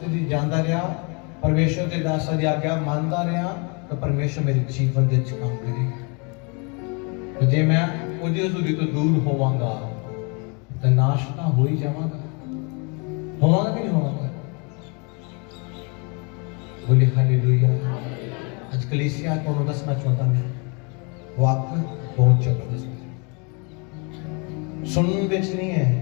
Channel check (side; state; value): right; quieter; 33.1 dB